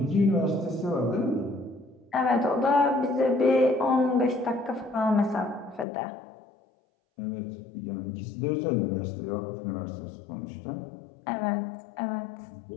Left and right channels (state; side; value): drops out; right; at 5.9 s